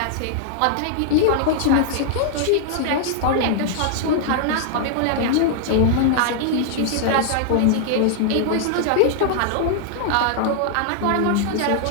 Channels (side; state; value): both; different; correlation -0.01